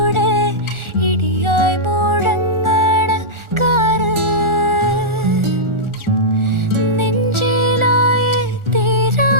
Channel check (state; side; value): late; left; 1.4 ms